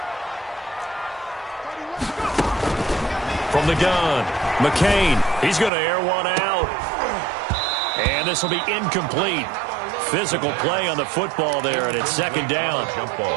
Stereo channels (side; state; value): left; drops out; at 5.7 s